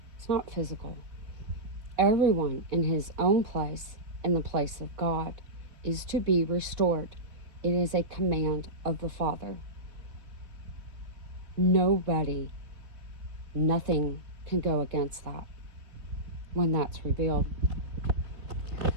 It's not physical. Everyone in his own place, in the place of God, is to be restored. It is a command of the Father. Nothing can go against that when that's revealed.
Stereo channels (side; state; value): left; late; 4.0 ms